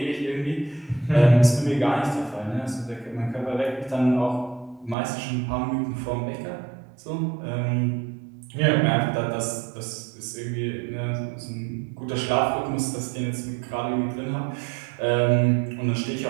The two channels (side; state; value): left; drops out; at 5.0 s